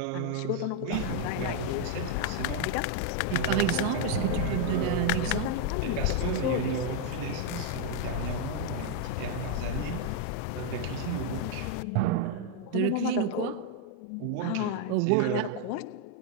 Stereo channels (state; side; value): different; both; correlation 0.00